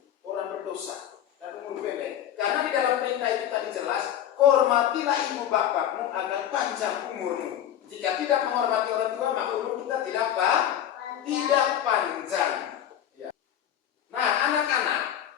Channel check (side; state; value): right; quieter; 10.6 dB